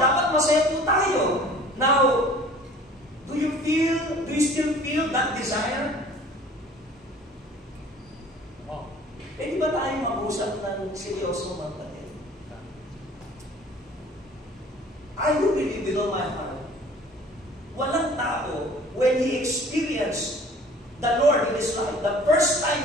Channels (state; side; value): normal; both; correlation 0.49